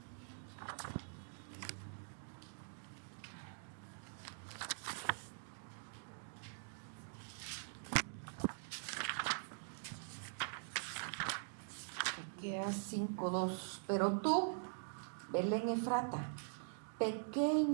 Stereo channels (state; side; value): silent; left; digital silence